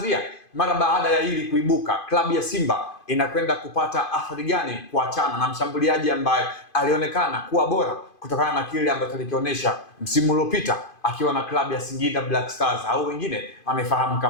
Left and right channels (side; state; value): right; late; 2.5 ms